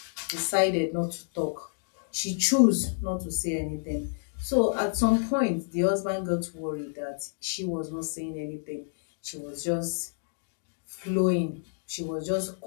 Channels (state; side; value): silent; right; digital silence